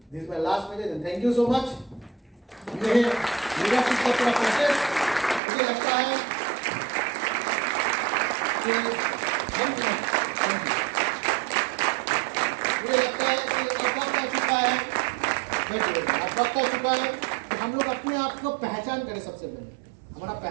this is my last message and thank you so much. ये लीडरशिप का पूरा प्रोसेस मुझे लगता है कि मुझे लगता है कि अब वक्त आ चुका है, अब वक्त आ चुका है कि हम लोग अपने आप को पहचान करें। सबसे पहले हमारा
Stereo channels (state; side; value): drops out; left; at 5.4 s